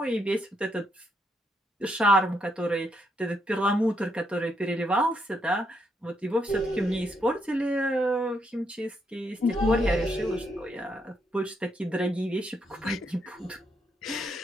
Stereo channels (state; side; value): normal; both; correlation 0.77